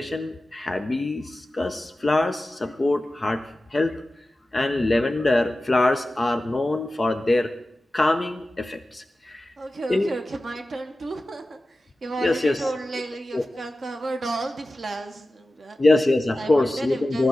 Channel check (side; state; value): both; normal; correlation 0.95